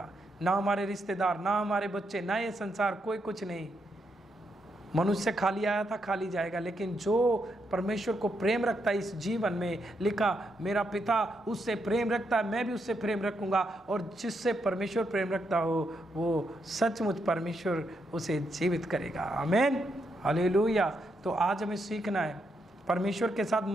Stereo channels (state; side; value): normal; both; correlation 0.80